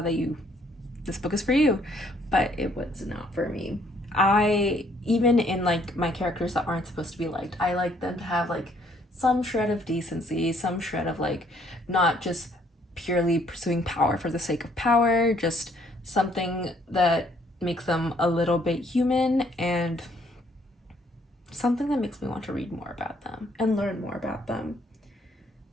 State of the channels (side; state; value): both; normal; correlation 0.65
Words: that this book is for you. But it was not for me. I even in like my characters that aren't supposed to be liked, I like them to have like some shred of decency, some shred of like not just purely pursuing power for the sake of power, just something that makes them a little bit human and something that makes me want to read more about them and learn more about them.